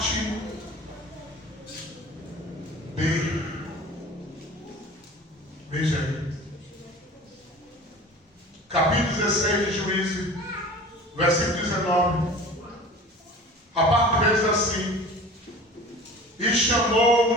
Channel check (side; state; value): both; normal; correlation 0.41